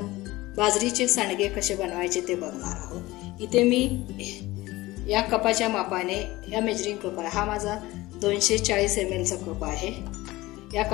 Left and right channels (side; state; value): right; quieter; 19.2 dB